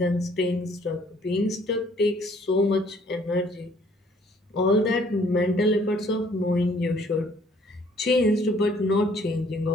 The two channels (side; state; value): both; normal; correlation 0.61